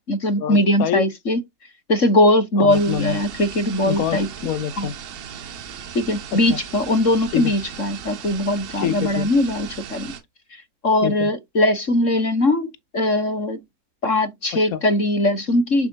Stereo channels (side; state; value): right; late; 3.7 ms